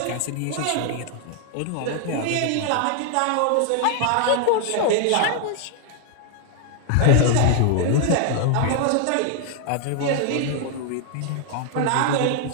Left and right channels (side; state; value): both; different; correlation 0.00